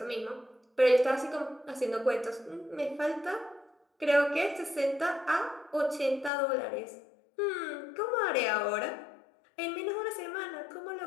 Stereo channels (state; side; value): drops out; right; at 6.3 s